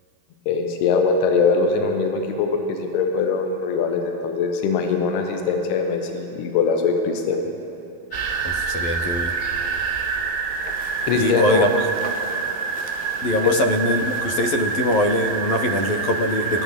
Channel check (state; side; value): late; right; 11 ms